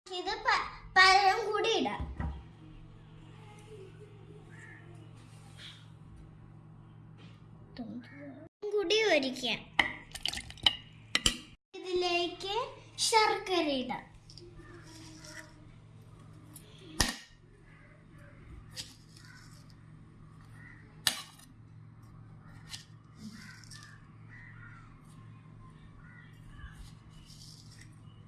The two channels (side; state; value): both; identical; correlation 1.00